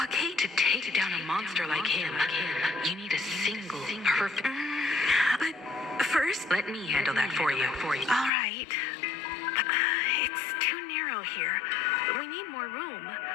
To take down a monster like him, you need a single perfect... But first... Let me handle that for you. All right. It's too narrow here. We need more room.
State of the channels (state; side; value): drops out; right; at 8.3 s